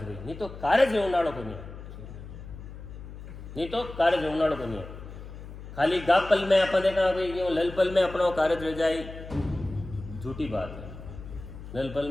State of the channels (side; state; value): left; noise; hum, 13 dB below the sound